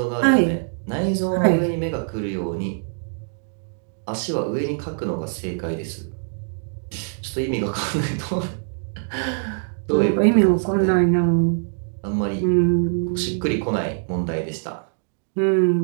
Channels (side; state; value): left; silent; digital silence